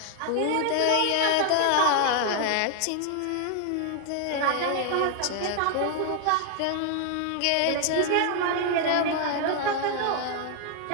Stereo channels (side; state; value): both; different; correlation 0.00